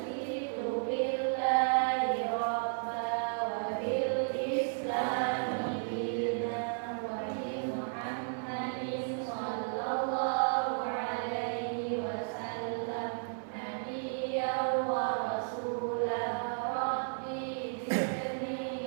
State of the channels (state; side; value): silent; left; 55 dB below the other